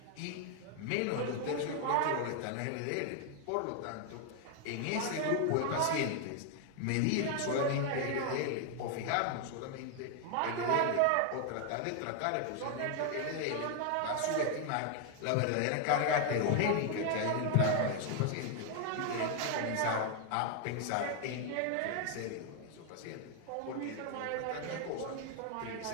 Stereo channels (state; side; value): different; both; correlation 0.00